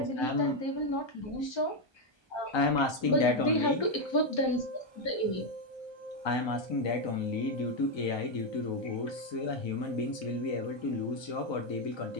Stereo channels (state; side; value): late; right; 1.2 ms